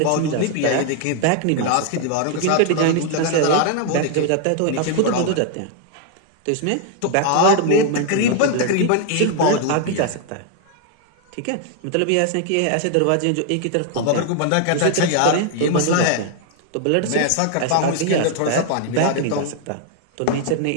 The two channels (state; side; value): different; both; correlation 0.00